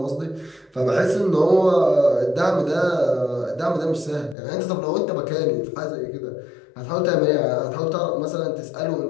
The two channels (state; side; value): drops out; right; at 4.4 s